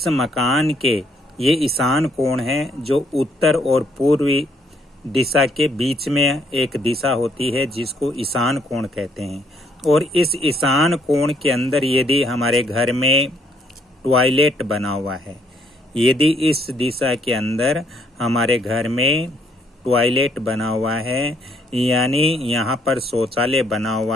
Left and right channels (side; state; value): both; normal; correlation 0.68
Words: मकान के ये ईशान कोण है जो उत्तर और पूर्वी दिशा के बीच में एक दिशा होती है जिसको ईशान कोण कहते हैं। और इस ईशान कोण के अंदर यदि हमारे घर में टॉयलेट बना हुआ है, यदि इस दिशा के अंदर हमारे घर में टॉयलेट बना हुआ है, यानी यहाँ पर शौचालय बना